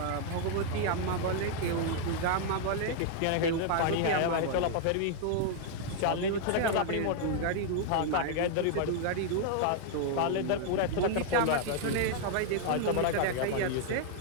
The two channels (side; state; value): both; different; correlation 0.00